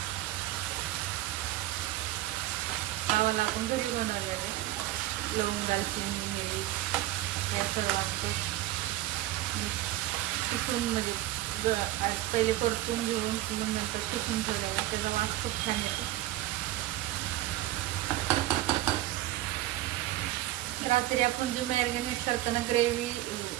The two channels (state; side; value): quieter; left; 15.5 dB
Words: हा वाला आपण घरी बनवलेला आहे. लवंग, दालचिनी, मिरी या सर्वांचं किसून म्हणजे पहिले परतून घेऊन नंतर किसून ठेवलेलं, त्याचा वास खूप छान येतो. रात्री आपण जी मॅरिनेट करताना ग्रेव्ही